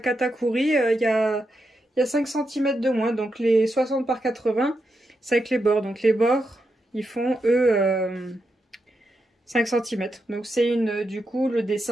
il y a 5 cm de moins. Donc les 60 par 80, c'est avec les bords. Donc les bords, ils font, eux, 5 cm. Donc c'est une... Du coup, le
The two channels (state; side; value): normal; both; correlation 0.85